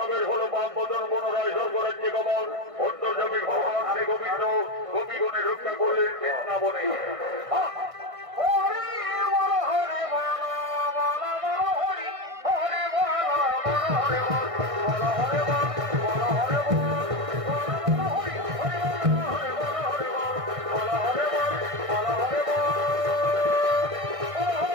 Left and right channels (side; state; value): left; late; 1.6 ms